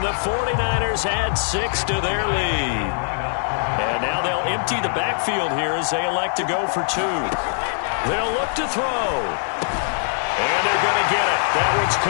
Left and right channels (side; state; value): right; silent; digital silence